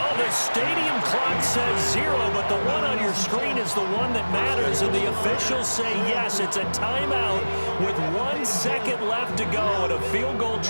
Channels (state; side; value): inverted; both; correlation -1.00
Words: the stadium clock says 0, but the one on your screen is the one that matters. And the officials say yes, it's a timeout with 1 second left to go and a field goal